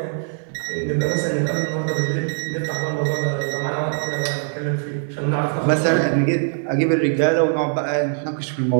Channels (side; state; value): left; silent; digital silence